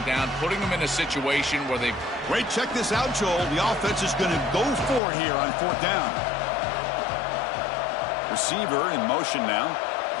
down, putting them in a situation where they... Wait, check this out, Joel. The offense is going to go for it here on fourth down. Receiver in motion now.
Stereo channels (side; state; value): right; drops out; at 5.0 s